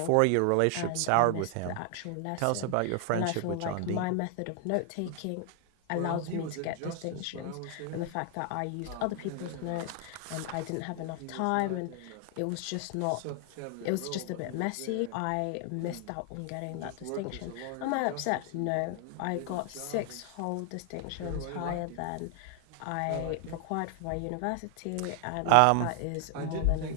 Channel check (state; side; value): different; both; correlation 0.00